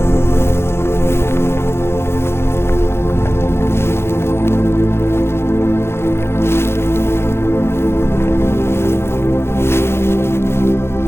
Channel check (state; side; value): late; right; 0.12 ms